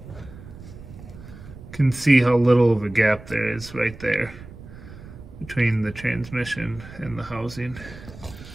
can see how little of a gap there is right there between the transmission and the housing.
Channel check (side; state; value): right; noise; rumble, 16 dB below the sound